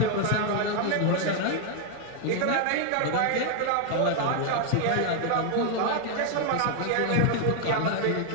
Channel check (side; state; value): both; different; correlation 0.00